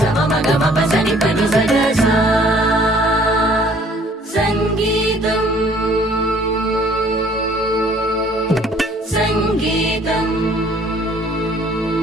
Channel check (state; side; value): normal; both; correlation 0.58